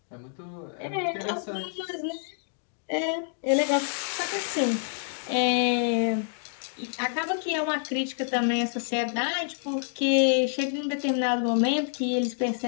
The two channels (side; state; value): right; silent; digital silence